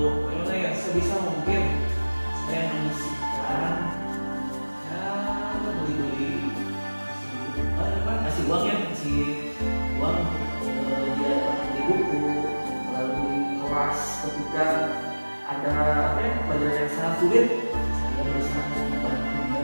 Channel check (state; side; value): inverted; both; correlation -1.00